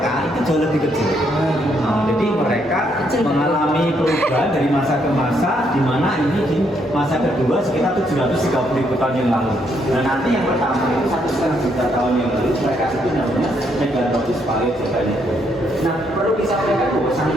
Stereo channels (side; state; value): both; normal; correlation 0.73